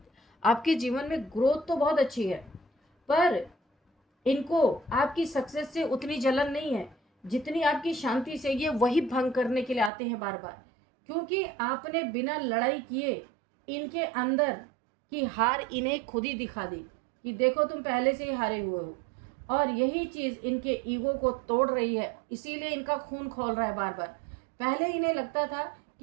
आपके जीवन में ग्रोथ तो बहुत अच्छी है। पर इनको आपकी सक्सेस से उतनी जलन नहीं है जितनी आपकी शांति से। ये वही भंग करने के लिए आते हैं बार बार, क्योंकि आपने बिना लड़ाई किए इनके अंदर की हार इन्हें खुद ही दिखा दी कि देखो तुम पहले से ही हारे हुए हो। और यही चीज़ इनके ईगो को तोड़ रही है, इसीलिए इनका खून खौल रहा है बार बार। पहले इन्हें लगता था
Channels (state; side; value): drops out; left; at 9.9 s